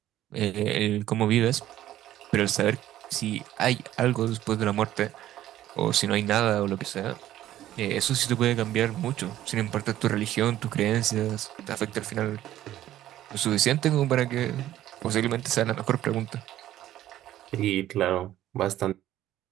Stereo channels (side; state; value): left; quieter; 13.2 dB